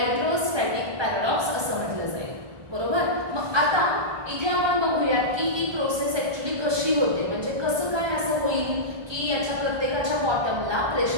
paradox असं म्हटलं जाईल, बरोबर. मग आता इथे आपण बघूयात की ही प्रोसेस ऍक्च्युअली कशी होते. म्हणजे कसं काय असं होईल की याच्या प्रत्येकाच्या बॉटमला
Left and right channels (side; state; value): left; late; 1.2 ms